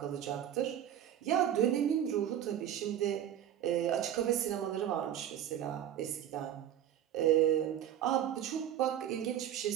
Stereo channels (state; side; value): quieter; left; 10.6 dB